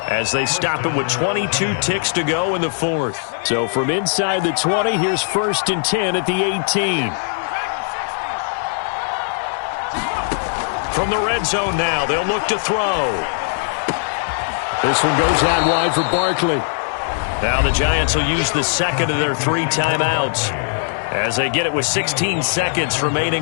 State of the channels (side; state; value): right; silent; digital silence